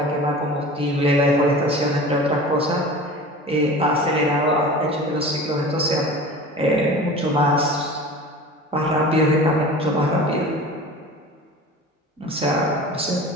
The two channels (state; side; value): normal; both; correlation 0.38